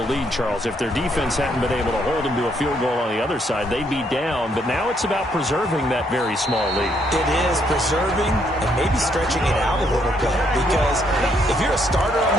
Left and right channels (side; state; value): both; normal; correlation 0.72